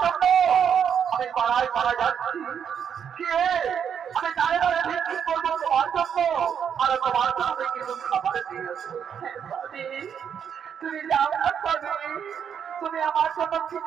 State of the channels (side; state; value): left; quieter; 7.9 dB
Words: জন্য আমি পাড়ায় পাড়ায় যাচ্ছি কে আমি দাঁড়িয়ে দাঁড়িয়ে ভিক্ষা করবো তোমার জন্য আর তোমার জন্য কিছু খাবার দিয়ে তুমি যাও না স্বামী তুমি আমার জন্য